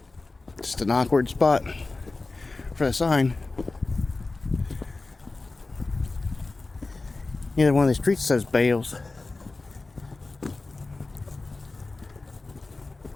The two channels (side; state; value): right; quieter; 3.5 dB